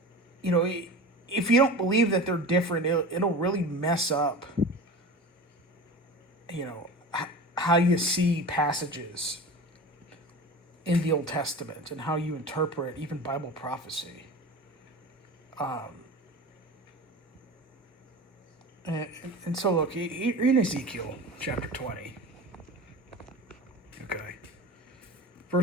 you know, if you don't believe that they're different, it'll really mess up, you know, how you see passages in the Old Testament and how you interpret even Bible prophecy. And so, look, in Ezekiel chapter 20, okay,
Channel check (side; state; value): both; normal; correlation 0.33